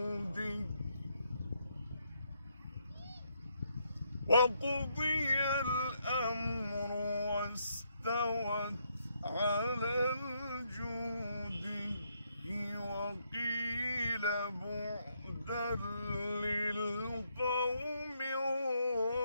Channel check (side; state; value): both; inverted; correlation -0.76